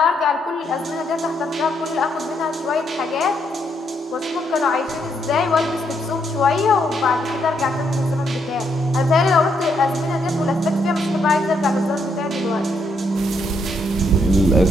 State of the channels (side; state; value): both; normal; correlation 0.75